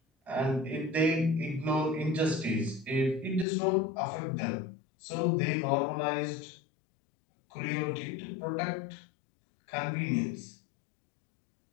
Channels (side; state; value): right; drops out; at 3.5 s